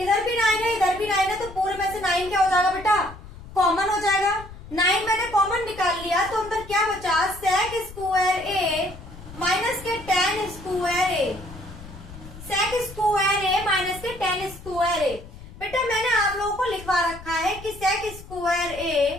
भी 9 है इधर भी 9 है, तो पूरे में से 9 क्या हो जाएगा बेटा, कॉमन हो जाएगा। 9 मैंने कॉमन निकाल लिया तो अंदर क्या बचा, sec स्क्वायर ए माइनस के tan square A, sec square A minus के tan स्क्वायर ए। बेटा मैंने आप लोगों को लिखवा रखा है कि sec square A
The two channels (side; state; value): left; noise; rumble, 16 dB below the sound